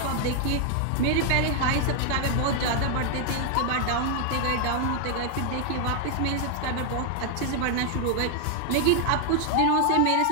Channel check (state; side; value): different; both; correlation 0.00